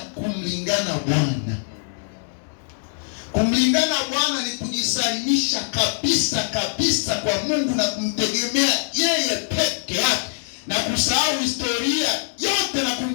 Bwana. Kumlingana Bwana ni kujisalimisha kabisa kwa Mungu na kumtegemea yeye peke yake, na kusahau historia yote na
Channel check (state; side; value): silent; right; 64 dB below the other